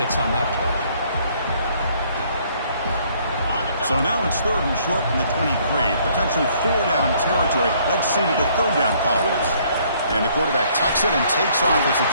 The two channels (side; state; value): both; inverted; correlation -0.63